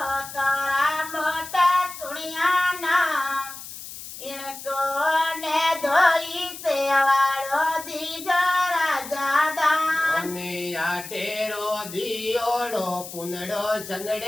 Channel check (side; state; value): left; noise; hiss, 12 dB below the sound